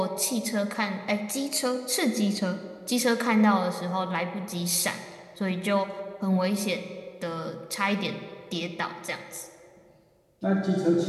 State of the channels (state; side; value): identical; both; correlation 1.00